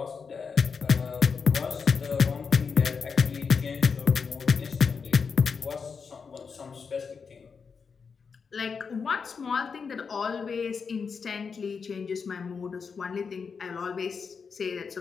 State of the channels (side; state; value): right; quieter; 5.6 dB